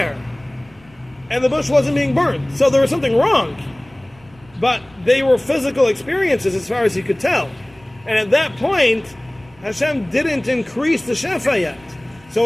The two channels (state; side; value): noise; right; rumble, 28 dB below the sound